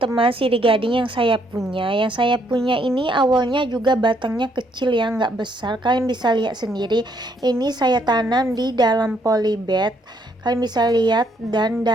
sirih gading yang saya punya. Yang saya punya ini awalnya juga batangnya kecil ya, nggak besar. Kalian bisa lihat sendiri. Ini saya tanam di dalam polybag. Kalian bisa lihat, dan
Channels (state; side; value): normal; both; correlation 0.70